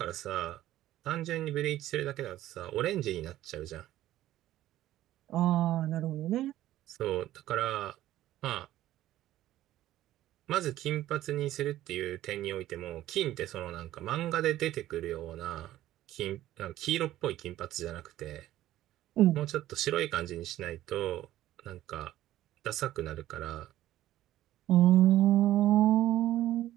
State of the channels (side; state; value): left; quieter; 14.1 dB